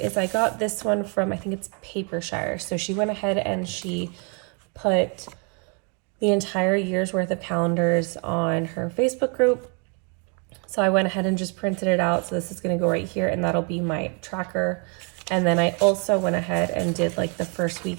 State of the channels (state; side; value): quieter; left; 34.8 dB